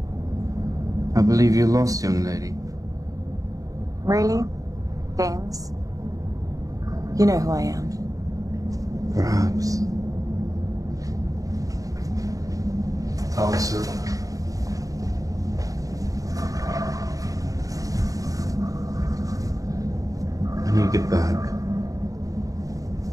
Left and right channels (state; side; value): late; left; 0.17 ms